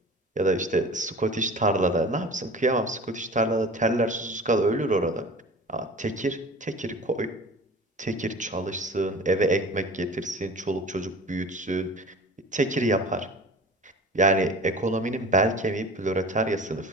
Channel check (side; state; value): both; normal; correlation 0.39